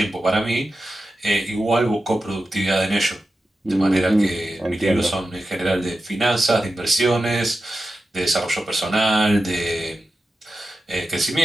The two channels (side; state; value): both; normal; correlation 0.91